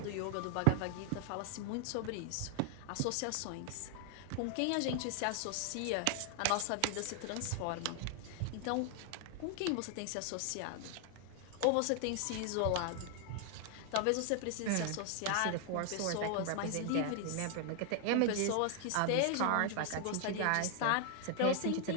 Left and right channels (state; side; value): different; both; correlation 0.00